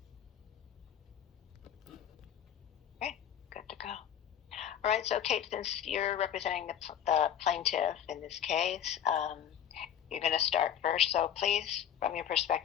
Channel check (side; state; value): right; quieter; 9.5 dB